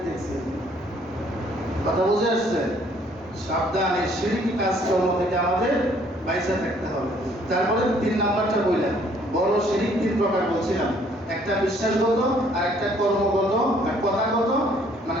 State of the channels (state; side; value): normal; both; correlation 0.62